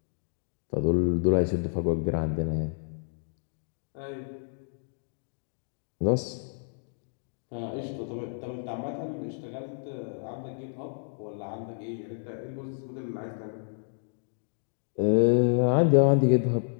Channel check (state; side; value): silent; right; digital silence